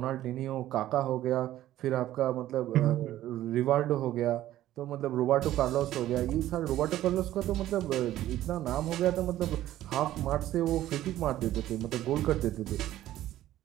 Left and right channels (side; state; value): left; quieter; 13.8 dB